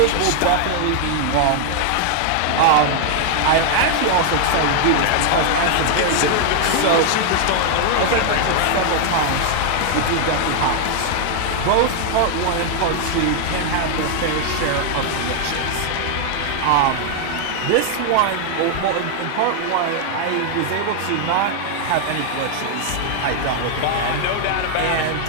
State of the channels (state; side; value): different; both; correlation 0.00